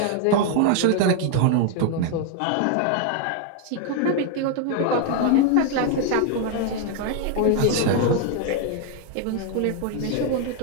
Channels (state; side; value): different; both; correlation 0.00